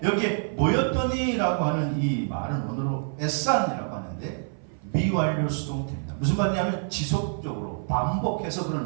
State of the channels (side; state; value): left; silent; 57 dB below the other